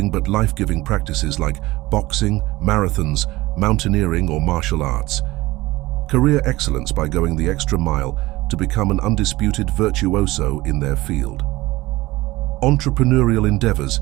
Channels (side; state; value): left; quieter; 19.3 dB